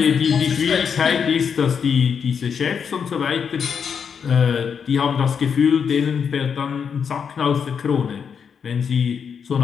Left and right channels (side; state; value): right; quieter; 6.8 dB